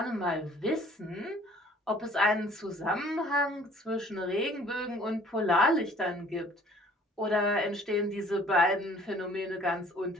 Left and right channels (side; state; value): both; normal; correlation 0.54